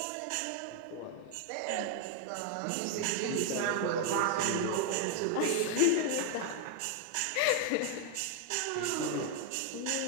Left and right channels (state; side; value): different; both; correlation 0.01